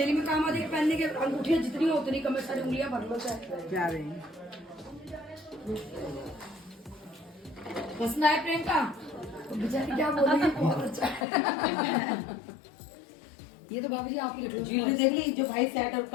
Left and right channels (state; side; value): drops out; right; at 11.2 s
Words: में काम आती है पहनने के। अंगूठियाँ जितनी हो उतनी कम है, सारी उंगलियां भर लो चाहे। जा रहे हैं। पसंद आया प्रियंका? तो बेचारी क्या बोलेगी, बहुत अच्छा है। ये तो बाबू जी आप ही रख लो। ज्वेलरी देख ली जो भाई सेट और